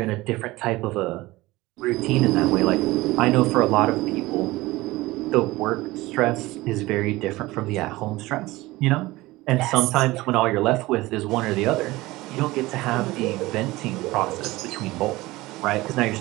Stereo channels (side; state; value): left; quieter; 19.6 dB